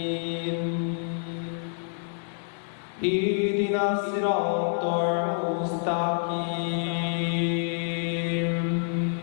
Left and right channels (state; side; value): silent; right; digital silence